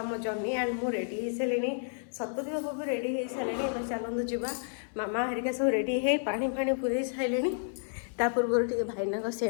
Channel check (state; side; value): silent; right; 57 dB below the other